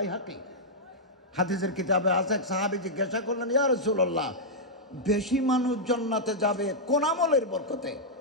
হাদিসের কিতাবে আছে। এক সাহাবী জিজ্ঞাসা করলেন, ইয়া রাসূলুল্লাহ, বেশি মানুষ জান্নাতে যাবে কোন আমলের বরকতে?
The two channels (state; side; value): normal; both; correlation -0.08